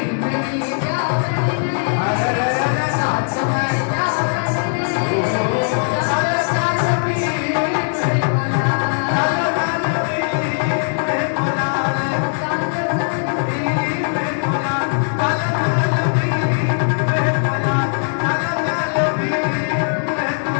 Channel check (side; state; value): right; silent; digital silence